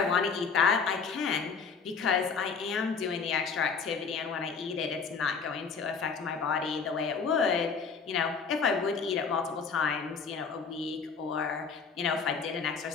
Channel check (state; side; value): quieter; right; 5.5 dB